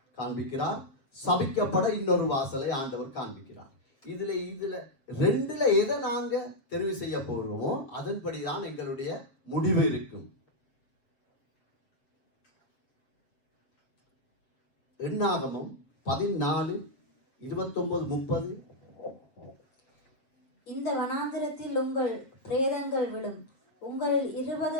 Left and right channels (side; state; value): right; late; 7.3 ms